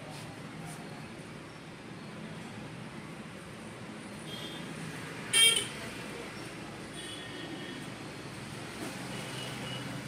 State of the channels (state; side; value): identical; both; correlation 1.00